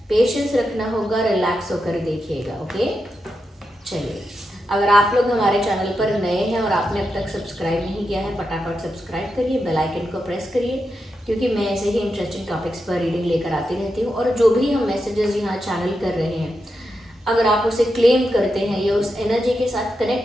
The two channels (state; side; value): normal; both; correlation 0.87